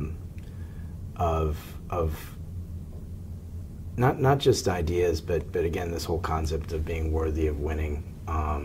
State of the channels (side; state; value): both; identical; correlation 1.00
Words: not just ideas, but again, this whole concept of being worthy of winning,